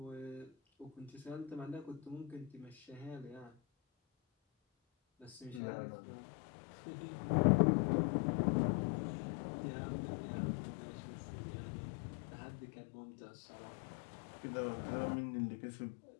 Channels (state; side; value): drops out; right; at 5.6 s